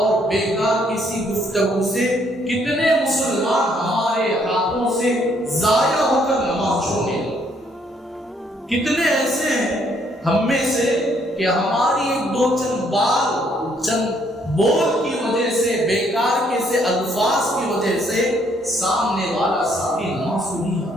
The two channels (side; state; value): both; normal; correlation 0.68